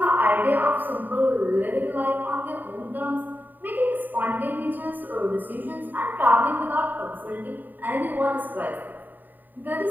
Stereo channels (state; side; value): late; left; 0.089 ms